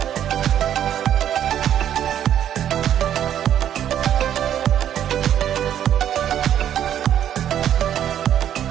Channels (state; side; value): quieter; left; 10.3 dB